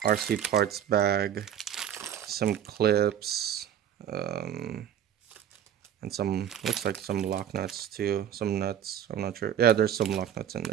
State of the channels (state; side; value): quieter; left; 9.7 dB